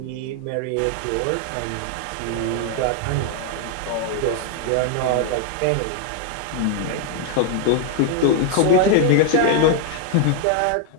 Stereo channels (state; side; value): different; both; correlation 0.00